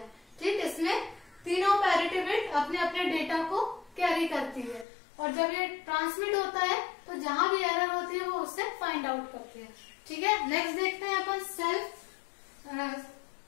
ठीक, इसमें तीनों पैरिटी बिट अपने अपने डेटा को कैरी करती है और जब ये ट्रांसमिट होता है तो जहां भी एरर होती है वो उससे फाइंड आउट करती है। ठीक है, नेक्स्ट देखते हैं अपन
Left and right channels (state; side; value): drops out; right; at 4.9 s